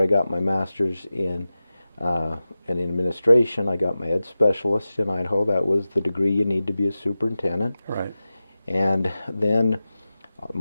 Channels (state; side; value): inverted; both; correlation -0.95